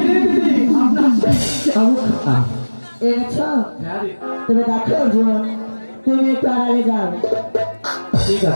রে দিদি, আপনার সেই চাবুক খান। এনেছ? হ্যাঁ দিদি। তবে দেখো অর্জুন, তুমি একটু আড়ালে যাও। ঠিক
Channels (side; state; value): both; inverted; correlation -1.00